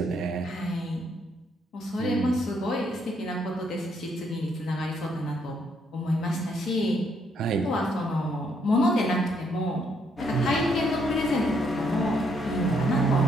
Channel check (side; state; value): both; normal; correlation 0.72